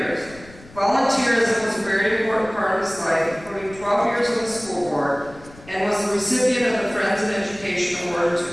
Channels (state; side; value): noise; left; rumble, 21 dB below the sound